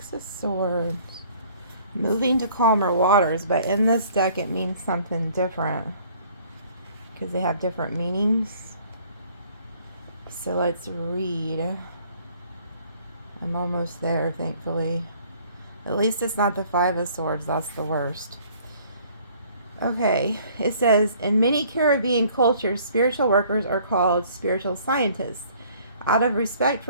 of Swords. Moving to calmer waters, but in this deck it means something different. Because they have different meanings. So let's read. I'm almost there, thankfully. At least it's not the 5 of Swords, that's the worst. Okay, it says, in many Caribbean cultures, spiritual workers are called spiritual scientists. Out of respect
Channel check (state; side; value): inverted; both; correlation -0.57